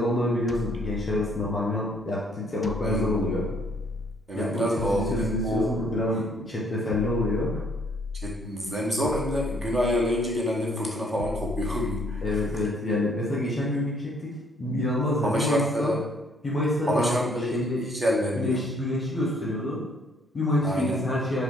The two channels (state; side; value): normal; both; correlation 0.64